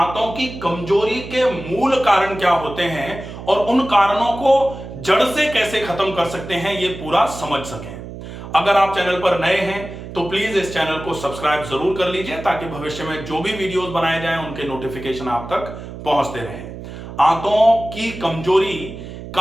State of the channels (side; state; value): right; noise; hum, 12 dB below the sound